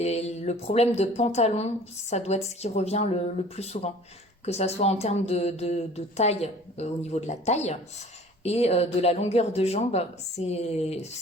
le problème de pantalon, ça doit être ce qui revient le plus souvent. Que ça soit en termes de taille, au niveau de la taille, et de la longueur de jambe, c'est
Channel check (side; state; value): both; normal; correlation 0.48